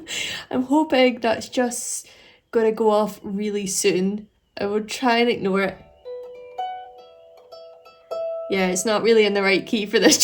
I'm hoping that's just going to go off really soon. I will try and ignore it. Yeah, it's not really in the right key for this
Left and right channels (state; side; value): identical; both; correlation 1.00